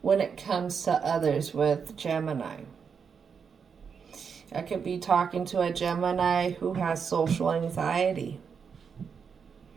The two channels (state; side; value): quieter; left; 6.3 dB